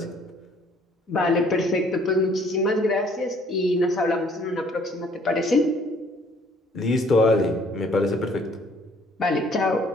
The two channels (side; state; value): both; normal; correlation 0.60